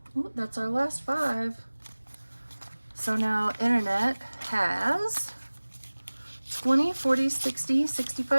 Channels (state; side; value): inverted; both; correlation -1.00